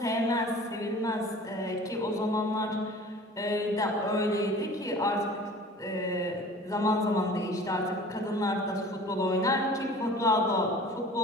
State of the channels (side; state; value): both; normal; correlation 0.44